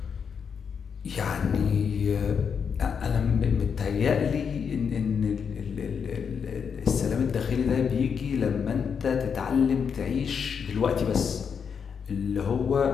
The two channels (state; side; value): quieter; right; 6.7 dB